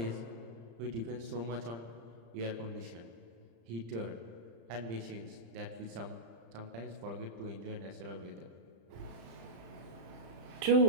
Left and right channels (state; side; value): late; left; 35 ms